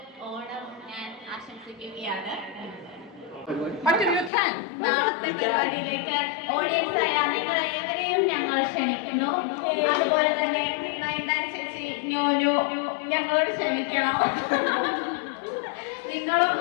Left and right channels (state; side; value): drops out; right; at 4.3 s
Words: ഓണം ഞാൻ ആശംസിക്കുകയാണ്. നാളത്തെ പരിപാടിയിലേക്ക് ഓഡിയൻസ് ആയ നിങ്ങൾ ഏവരെയും ഞങ്ങൾ ക്ഷണിക്കുന്നു. അതുപോലെ തന്നെ നയൻതാര ചേച്ചി ന്യൂനു ഞങ്ങളോട് ക്ഷമിക്കണം. നിങ്ങളും